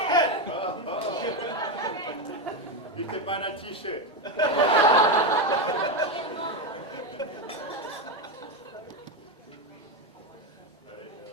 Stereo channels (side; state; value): both; normal; correlation 0.11